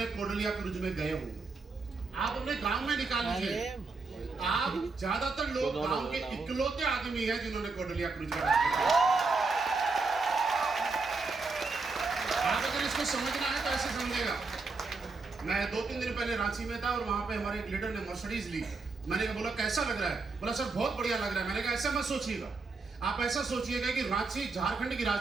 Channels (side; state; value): left; quieter; 4.0 dB